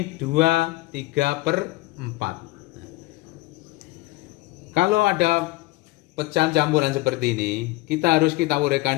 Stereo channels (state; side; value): quieter; right; 20.0 dB